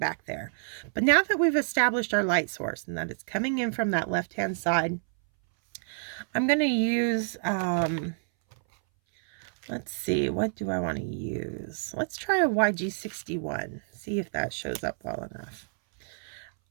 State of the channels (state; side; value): silent; left; 59 dB below the other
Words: there. But now that we've established our light source and that it's coming in from that left-hand side, I'm going to use, let's see, what do I want to use? Let's try a YG61, see if that shows up well enough.